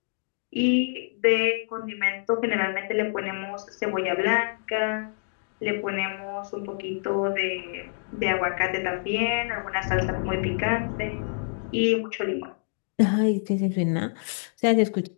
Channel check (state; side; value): silent; right; digital silence